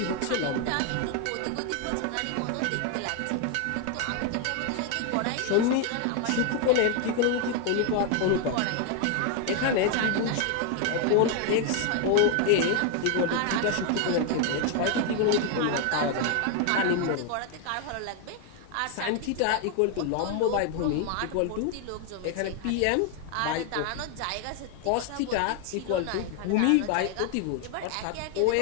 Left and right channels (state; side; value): different; both; correlation 0.01